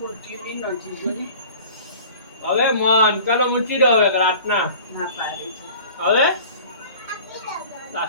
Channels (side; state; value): both; inverted; correlation -0.44